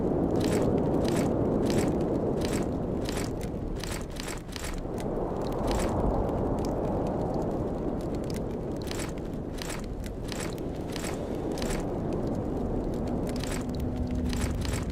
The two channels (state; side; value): identical; both; correlation 1.00